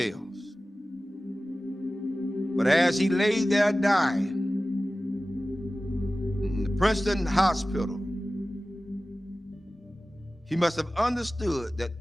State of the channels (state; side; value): normal; both; correlation 0.96